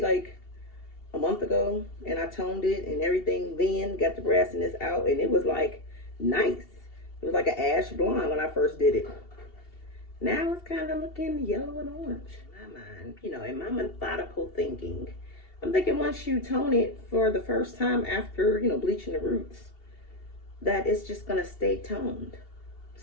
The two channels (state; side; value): late; right; 2.8 ms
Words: like a month ago, and I toned it and everything, then got the brassiness out, and it was like nice. It was like an ash blonde when I first did it. Now it's kind of looking yellow and orange. In my mind, in my methodical thinking, I'm thinking once you tone it for the first time after, bleaching the roots, that it's just going to stay toned.